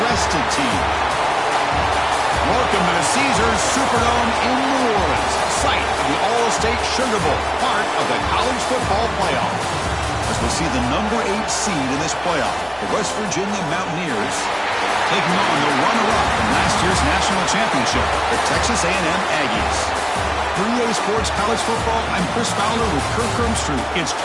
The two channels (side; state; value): both; identical; correlation 1.00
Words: team? Welcome to the Caesars Superdome in New Orleans, site of the All-State Sugar Bowl, part of the college football playoff. As we see the number 8 seed in this playoff, the West Virginia Mountaineers taking on the runner-up from last year's national championship, the Texas A&M Aggies. For EA Sports College Football, I'm Chris Fowler with Kirk Ermstrud. It's